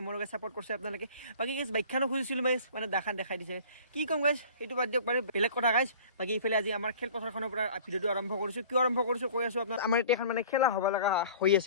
মোৰ গেছ চাপৰ্ট কৰিছে আপোনালোকে বাকী গেছ বাইকখানো খুজিছিলোঁ গেছ মানে দাখান দেখাই দিছে কি ক'ম গেছ সেইটো বাদ দিয়ক বাৰু বেলেগ কথা গাইছ বাকী ইফালে আজি আমাৰ খেলপথাৰখনৰ পৰা ভিডিঅ'টো আৰম্ভ কৰিছোঁ কিয় আৰম্ভ কৰিছোঁ কৈ আছোঁ আপোনাৰ আমাৰ এতিয়া এখন মানে খেলা হ'ব লগা হৈ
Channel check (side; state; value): both; inverted; correlation -0.46